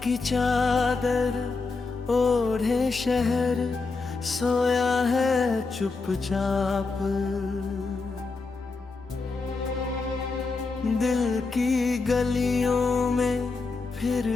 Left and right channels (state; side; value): quieter; right; 4.1 dB